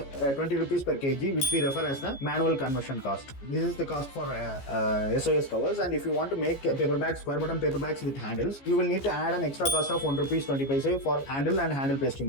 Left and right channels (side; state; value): right; late; 15 ms